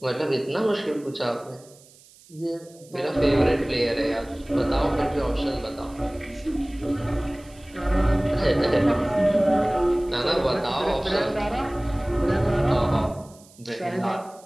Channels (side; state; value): right; noise; hiss, 25 dB below the sound